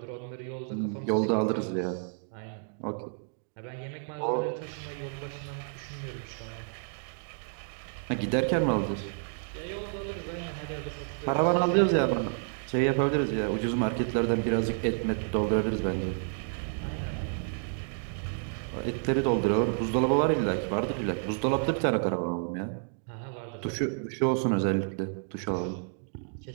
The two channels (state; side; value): silent; left; 58 dB below the other